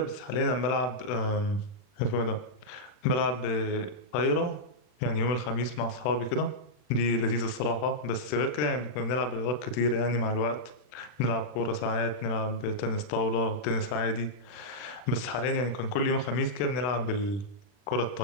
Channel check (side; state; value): right; late; 40 ms